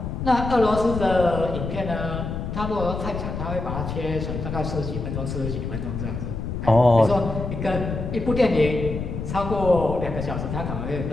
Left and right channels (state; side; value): noise; left; rumble, 5 dB below the sound